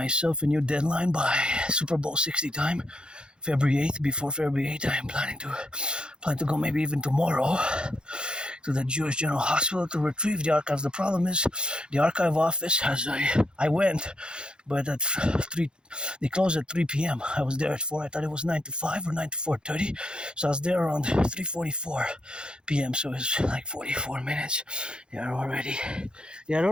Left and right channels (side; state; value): left; late; 0.050 ms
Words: a new deadline by Super Bowl 60 time, February 8th. Before February 8th, I am planning to go maybe even tomorrow to the Jewish General Hospital to retrieve the archives. The problem is the archive office I went, but at 3, they closed at 3 p.m. I was there at 4. I thought it was 9 to 5 or 9 to 4:30. So I was there around 3:44 p.m. So it's like 44 minutes. They had